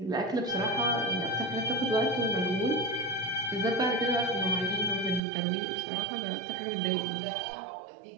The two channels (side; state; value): left; drops out; at 5.2 s